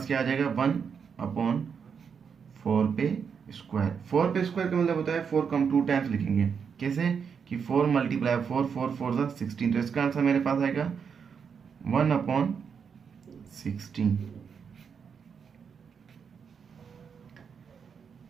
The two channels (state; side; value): quieter; left; 6.6 dB